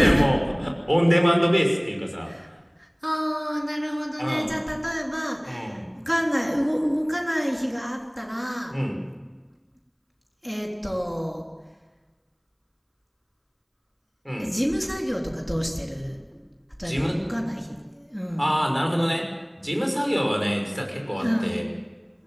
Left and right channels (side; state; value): both; identical; correlation 1.00